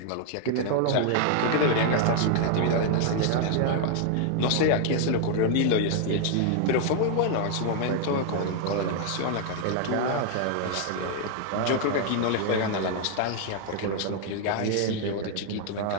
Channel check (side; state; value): both; different; correlation 0.00